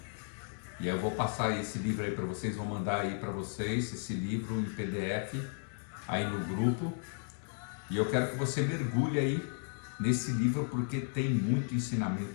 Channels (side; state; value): right; silent; 55 dB below the other